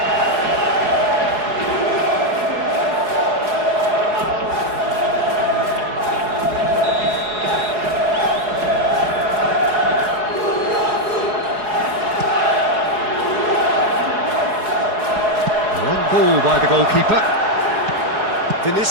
Ball by the goalkeeper.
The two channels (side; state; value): left; late; 4.7 ms